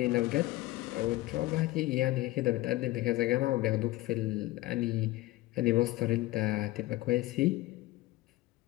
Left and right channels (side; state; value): right; quieter; 18.2 dB